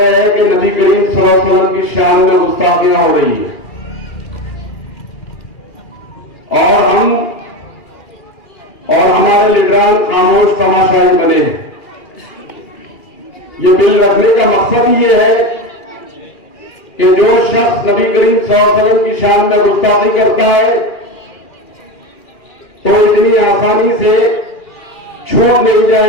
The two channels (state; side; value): late; right; 2.4 ms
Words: हैं कि नबी करीम सल्लल्लाहु अलैहि वसल्लम की शान में गुस्ताखियां हो रही है और हमारे लीडरान खामोश तमाशाई बने हैं। ये बिल रखने का मकसद ये है कि जो शख्स नबी करीम सल्लल्लाहु अलैहि वसल्लम की शान में गुस्ताखी करता है तो इतनी आसानी से छूट नहीं